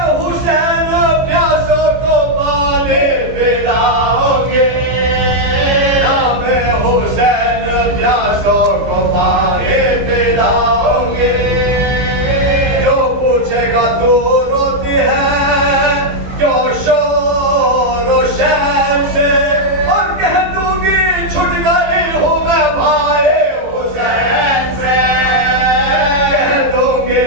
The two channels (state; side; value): late; left; 15 ms